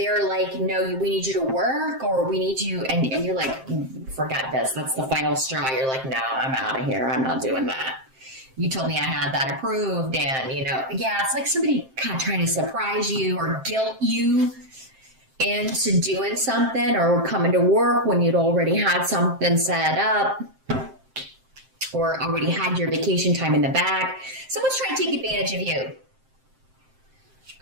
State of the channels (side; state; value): left; late; 7.6 ms